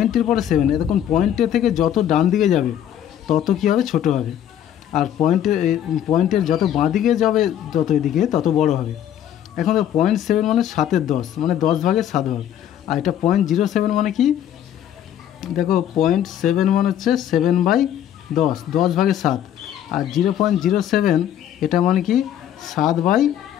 পরে 7, এখন পয়েন্টের থেকে যত ডান দিকে যাবে তত কী হবে, ছোট হবে। আর পয়েন্টের যত বাঁ দিকে যাবে যত এদিকে তত বড় হবে। এখন দেখো 0.7 মানে 7-এর 10, মানে 10 ভাগের 7 ভাগ। আর এটা 0.07 মানে কি, দেখো 0.7 মানে হচ্ছে 7/10, 10 ভাগের 7। আর 0.07 এটা মানে কি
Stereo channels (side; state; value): right; quieter; 10.6 dB